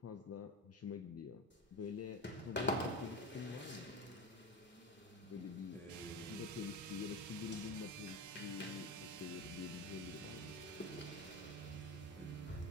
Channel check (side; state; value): both; normal; correlation 0.24